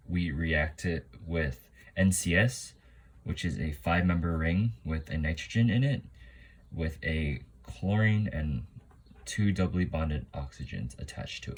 we react it with NCS, which is a 5-member ring with a nitrogen in it, with a chlorine and 2 doubly bonded oxygens attached to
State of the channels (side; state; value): both; identical; correlation 1.00